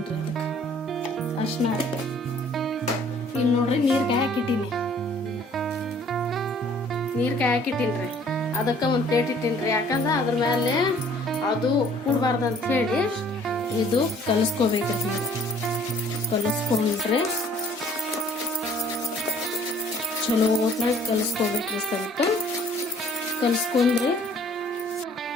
ಅದಕ್ಕೆ ಅರ್ಶಿನ ಇಲ್ಲಿ ನೋಡ್ರಿ, ನೀರು ಕಾಯಕ್ಕಿಟ್ಟೀನಿ. ನೀರು ಕಾಯಕ್ಕಿಟ್ಟೀನ್ರಿ. ಅದಕ್ಕೆ ಒಂದು ಪ್ಲೇಟ್ ಇಟ್ಟೀನ್ರಿ. ಯಾಕಂದ್ರೆ ಅದ್ರ ಮೇಲೆ ಅದು ಕೂಡಬಾರ್ದು ಅಂತ ಹೇಳಿ ಇದು ಕಲಿಸ್ಕೋಬೇಕ್ರಿ. ನೀವು ಕಲಿಸ್ಕೊಂಡ್ರೆ ಚಲೋ ಹೊತ್ನಾಗ ಕಲಿಸ್ಕೋಬೇಕ್ರಿ. ಸ್ವಲ್ಪ ಕಲಿಸ್ಕೊಂಡ್ರಿ.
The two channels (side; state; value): both; normal; correlation 0.57